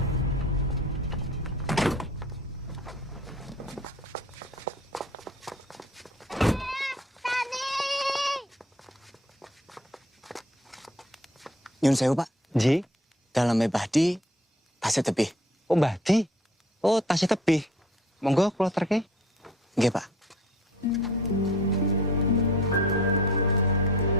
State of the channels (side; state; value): both; normal; correlation 0.51